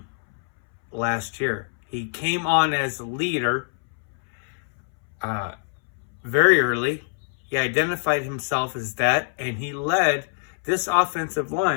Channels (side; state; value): right; silent; 62 dB below the other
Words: last year. He came on as a leader very early. He identified himself as that, and he led this offensive